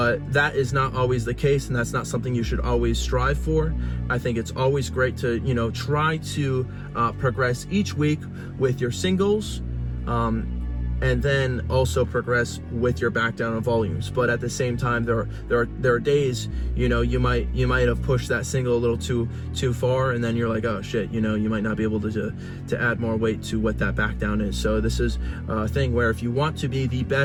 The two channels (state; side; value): identical; both; correlation 1.00